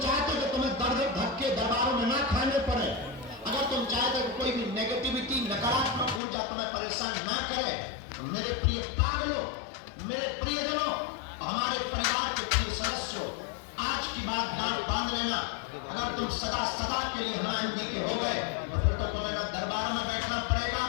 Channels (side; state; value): right; drops out; at 6.2 s